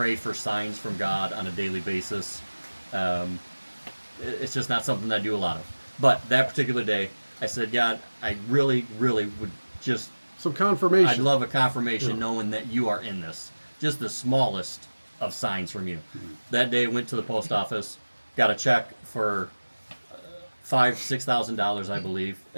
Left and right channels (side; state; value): both; inverted; correlation -1.00